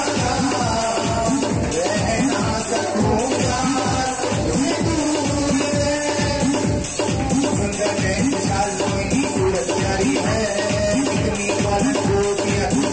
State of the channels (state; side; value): identical; both; correlation 1.00